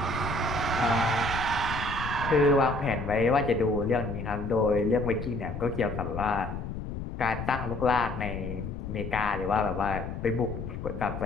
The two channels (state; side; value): noise; left; rumble, 7 dB below the sound